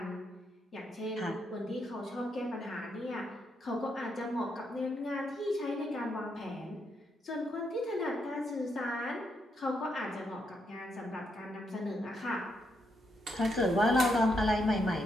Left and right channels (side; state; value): both; normal; correlation 0.79